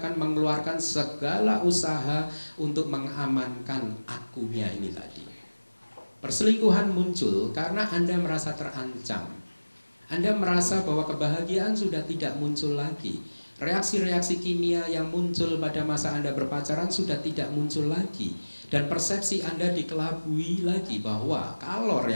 mengeluarkan segala usaha untuk mengamankan akunya ini tadi. Perselingkuhan muncul karena Anda merasa terancam. Anda merasa bahwa kebahagiaan sudah tidak muncul lagi. Reaksi-reaksi kimia yang muncul pada masa Anda berpacaran sudah tidak muncul lagi. Dan persepsi Anda dikelabui lagi bahwa kalau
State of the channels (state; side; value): inverted; both; correlation -1.00